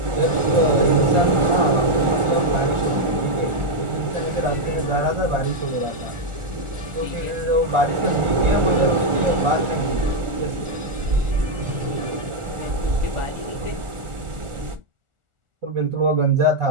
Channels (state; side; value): late; left; 1.4 ms